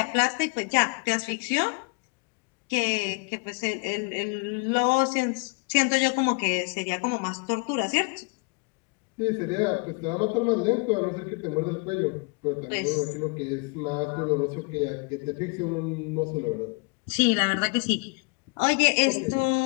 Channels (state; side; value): quieter; right; 32.3 dB